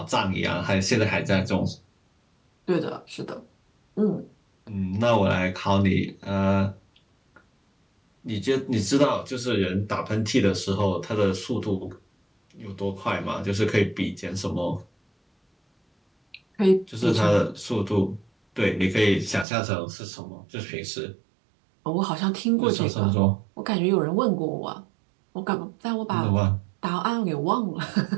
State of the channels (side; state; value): left; drops out; at 19.5 s